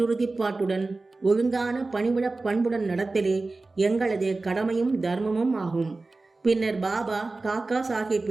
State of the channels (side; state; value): left; quieter; 3.4 dB